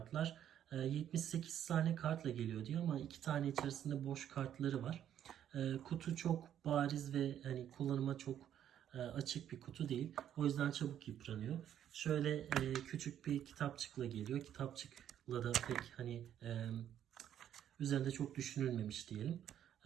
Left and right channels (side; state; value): left; quieter; 10.3 dB